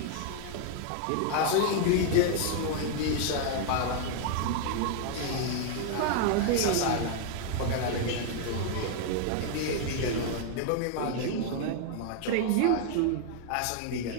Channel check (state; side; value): different; both; correlation 0.00